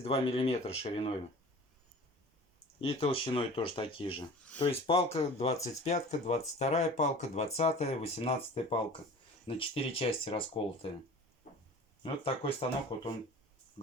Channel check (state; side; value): normal; both; correlation 0.41